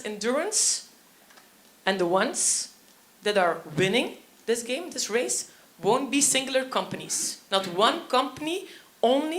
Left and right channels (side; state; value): both; identical; correlation 1.00